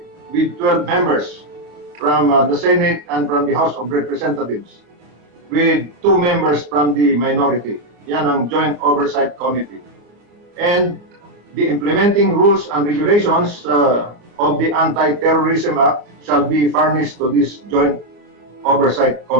with 12 members from the Senate and from the House of Representatives, with 2 members from the minority. Yan ang joint oversight committee. And the implementing rules and regulations of the Anti-Terrorism Act shall be furnished to this joint oversight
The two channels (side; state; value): left; late; 34 ms